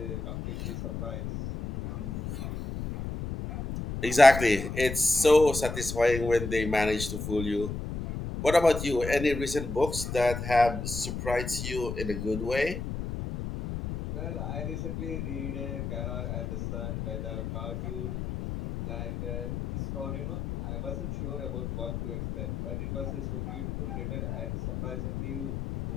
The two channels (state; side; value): noise; left; rumble, 5 dB below the sound